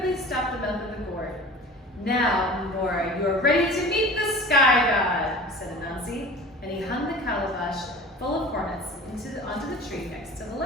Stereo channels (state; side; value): normal; both; correlation 0.39